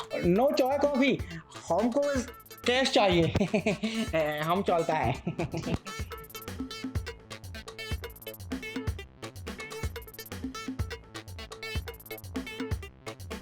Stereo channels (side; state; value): both; identical; correlation 1.00